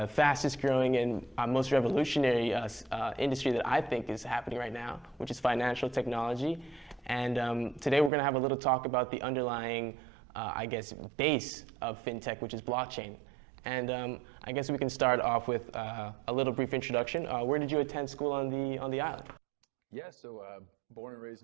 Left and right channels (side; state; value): left; drops out; at 8.1 s